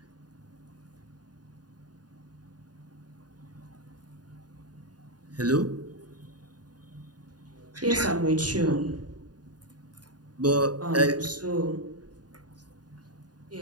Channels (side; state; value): left; late; 0.69 ms